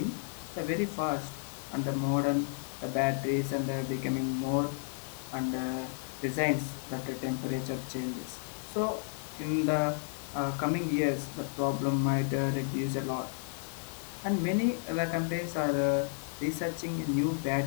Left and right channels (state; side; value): silent; right; 56 dB below the other